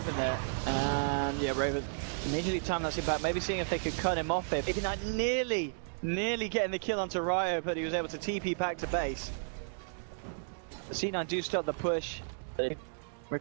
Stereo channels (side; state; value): left; silent; digital silence